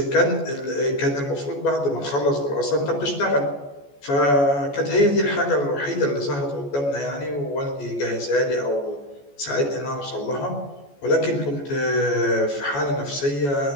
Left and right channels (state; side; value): late; right; 14 ms